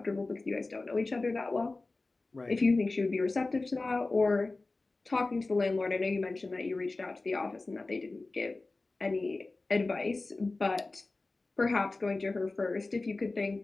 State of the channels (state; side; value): quieter; right; 3.3 dB